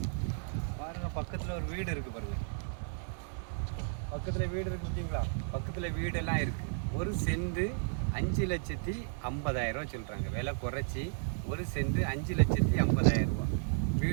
பாருங்கள், பக்கத்தில் ஒரு வீடு இருக்குது பாருங்கள். பக்கத்தில் வீடு இருக்குது பார்த்தீங்களா? பக்கத்தில் வீடெல்லாம் இருக்குது. ஒரு சென்ட் 5,50,000 சொல்கிறாங்க. விலை குறைச்சி ஒரு சென்ட் 5,50,000 ரூபா.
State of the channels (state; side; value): silent; left; 55 dB below the other